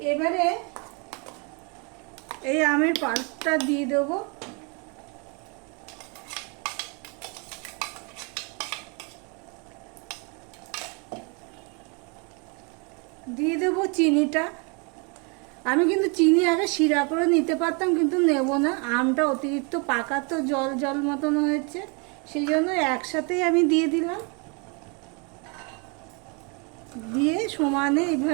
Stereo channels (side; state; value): left; quieter; 33.5 dB